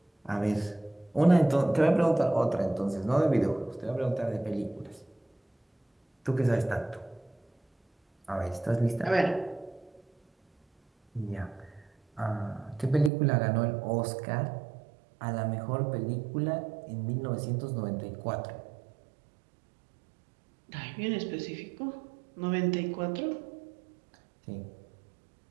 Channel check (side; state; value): left; drops out; at 13.1 s